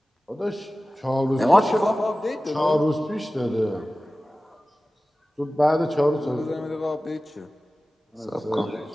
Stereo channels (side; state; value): both; normal; correlation 0.96